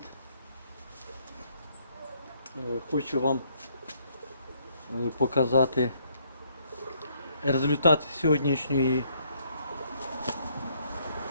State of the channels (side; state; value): both; inverted; correlation -0.68